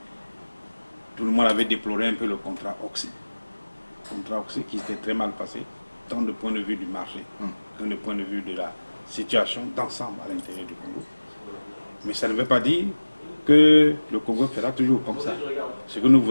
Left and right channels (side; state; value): both; inverted; correlation -1.00